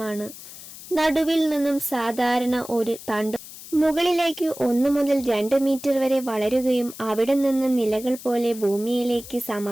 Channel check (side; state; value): left; noise; hiss, 15 dB below the sound